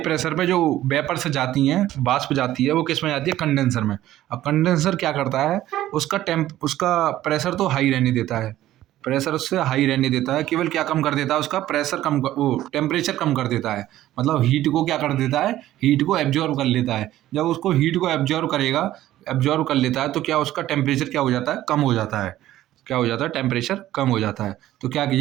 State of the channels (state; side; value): quieter; left; 14.0 dB